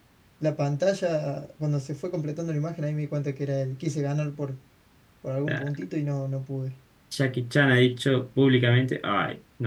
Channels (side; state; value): both; identical; correlation 1.00